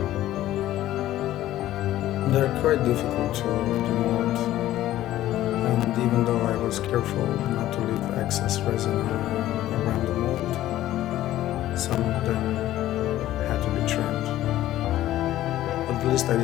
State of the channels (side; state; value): right; quieter; 14.1 dB